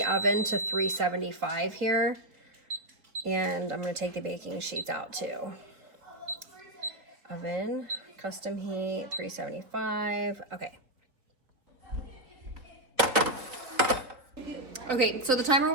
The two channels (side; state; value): left; late; 3.6 ms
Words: oven to 375 here. And I'm going to take the baking sheets out too. Oven, custom heat, 375. Okay. Okay, so the timer